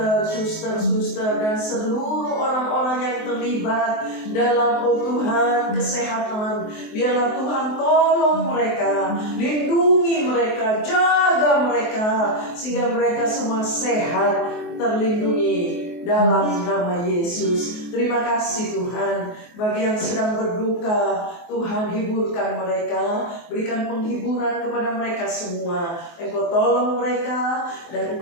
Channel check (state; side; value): late; right; 24 ms